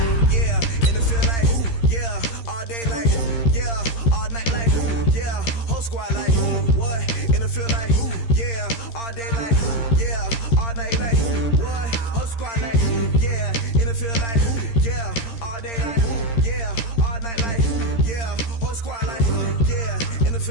yeah. And it feel like, yeah, all day like, yeah, all night like, yeah, whole squad like, what? And it feel like, yeah, all day like, yeah, all night like, what? Whole squad like, yeah, and it feel like, yeah, all day like, yeah, all night like, yeah, whole squad like, yeah, and it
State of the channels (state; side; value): late; right; 13 ms